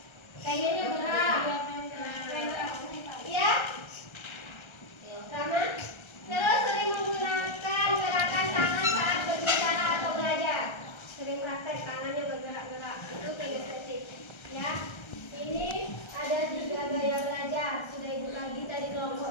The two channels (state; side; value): late; right; 1.3 ms